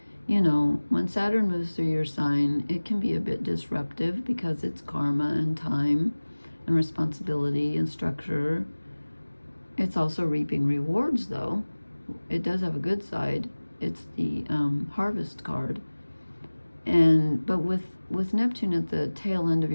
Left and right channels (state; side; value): inverted; both; correlation -1.00